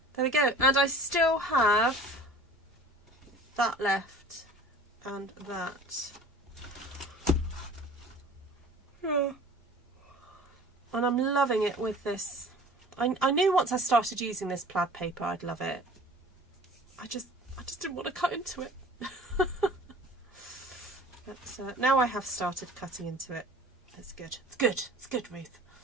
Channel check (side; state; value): both; normal; correlation 0.45